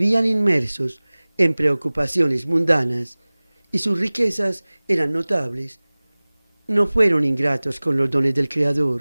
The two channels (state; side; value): inverted; both; correlation -1.00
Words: inmersos en preocupaciones mundanas y sus riquezas eran notables, no fueron ingratos con los dones del